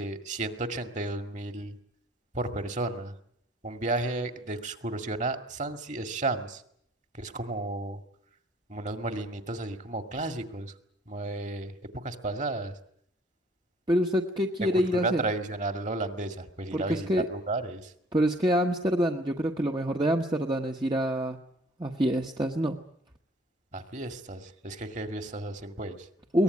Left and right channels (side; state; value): both; normal; correlation 0.56